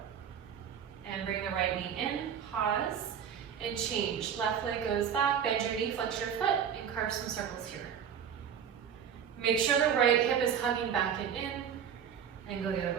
And bring the right knee in, pause, and change. Left leg goes back, bend your knee, flex your foot, and carve some circles here. Make sure the right hip is hugging back and in, and go the other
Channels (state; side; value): quieter; left; 8.2 dB